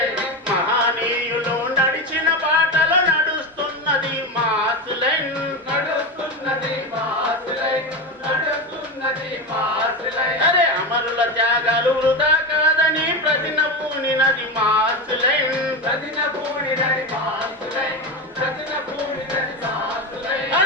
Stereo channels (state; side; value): normal; both; correlation 0.18